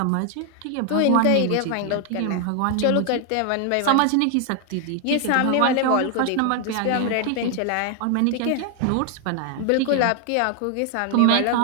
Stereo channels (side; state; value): both; different; correlation 0.00